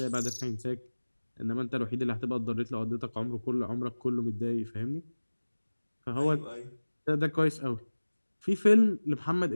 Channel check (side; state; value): both; inverted; correlation -1.00